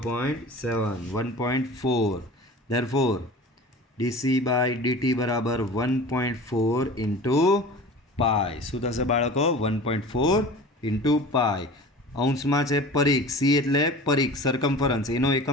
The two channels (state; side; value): normal; both; correlation 0.39